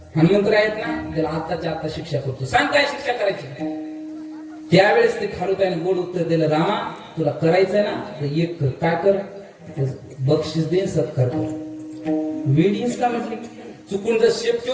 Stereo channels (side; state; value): both; identical; correlation 1.00